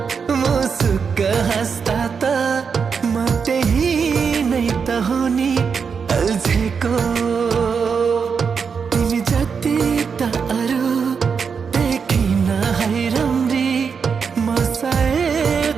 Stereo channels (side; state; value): left; quieter; 6.0 dB